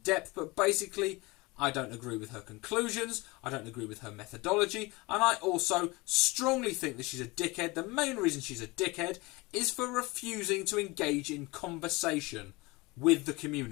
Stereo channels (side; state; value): right; quieter; 23.7 dB